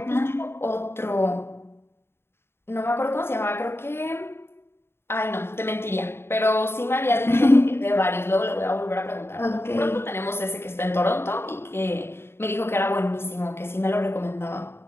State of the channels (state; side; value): late; right; 0.11 ms